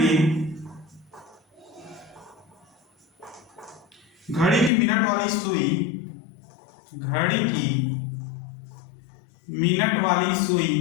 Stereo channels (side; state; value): right; drops out; at 4.7 s